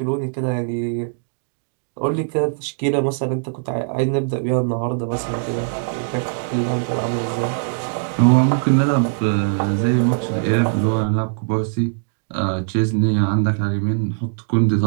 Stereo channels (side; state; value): left; silent; digital silence